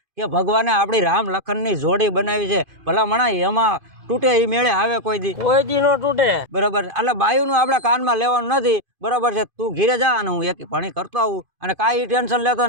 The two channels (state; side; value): late; left; 2.5 ms